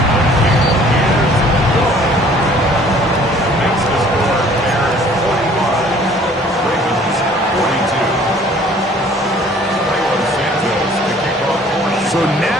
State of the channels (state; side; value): normal; both; correlation 0.54